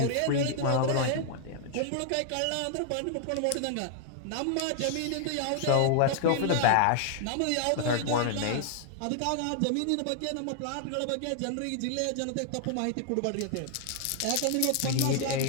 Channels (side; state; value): both; different; correlation 0.00